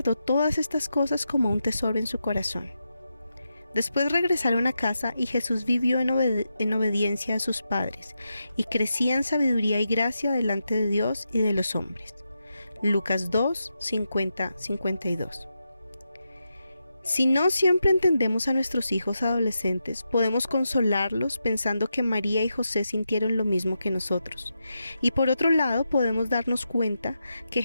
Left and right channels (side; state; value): both; inverted; correlation -0.87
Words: todas estas cosas como un tesoro en su corazón. Después regresaron a casa y Jesús vivió en obediencia a sus padres y crecía en sabiduría y gracia delante de Dios y de los hombres. Lucas 2:50-52. Si no siempre entendemos a nuestros hijos adolescentes, podemos consolarlos pensando que María y José sintieron lo mismo que nosotros. Y por otro lado, podemos darnos cuenta que